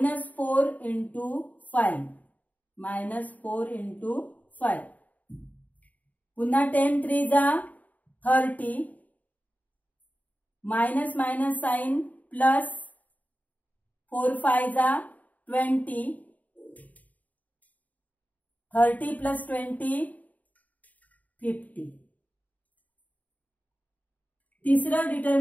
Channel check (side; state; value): right; late; 0.074 ms